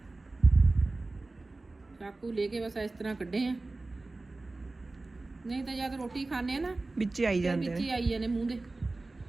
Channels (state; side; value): quieter; left; 3.2 dB